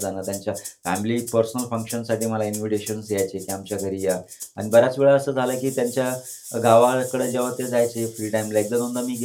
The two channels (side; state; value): both; identical; correlation 1.00